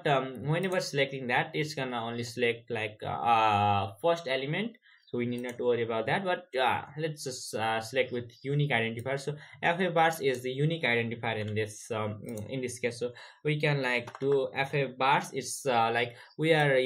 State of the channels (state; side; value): identical; both; correlation 1.00